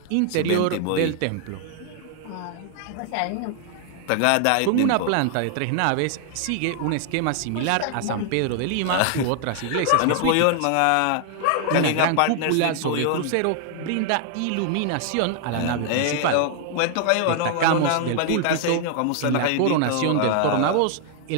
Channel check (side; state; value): both; different; correlation 0.00